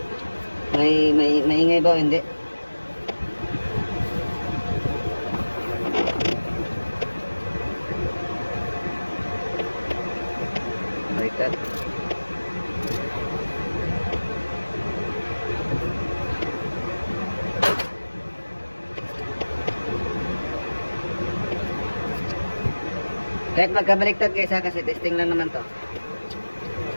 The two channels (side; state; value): both; inverted; correlation -1.00